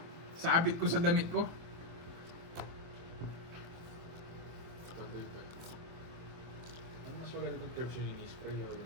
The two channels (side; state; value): left; late; 24 ms